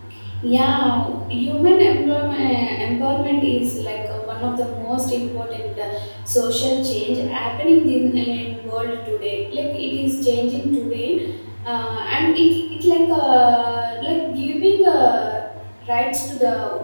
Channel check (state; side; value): inverted; both; correlation -1.00